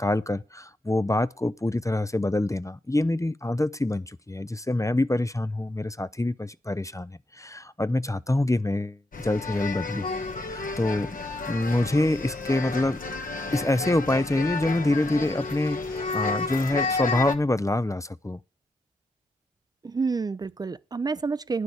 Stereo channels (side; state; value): both; normal; correlation 0.82